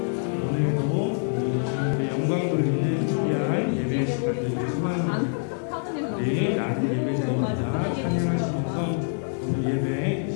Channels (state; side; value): silent; right; 60 dB below the other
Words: 오늘도 온전히 주님께 영광 돌리는 귀한 예배 시간 되기를 소망합니다. 우리 나는 예배자입니다. 찬양하시면서 오늘 예배 이